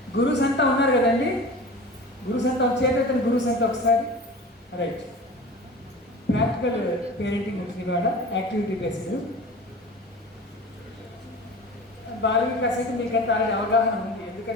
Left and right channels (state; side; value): normal; both; correlation 0.36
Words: గురుస్ అంతా ఉన్నారు కదండి, గురుస్ అంతా వచ్చేటట్టు గురుస్ అంతా ఒకసారి రైట్. ప్రాక్టికల్ పేరెంటింగ్ వచ్చింది ఇవాళ, యాక్టివిటీ బేస్డ్. బాల వికాస్ అయితే మీకంతా ఆల్రెడీ అవగాహన ఉంది,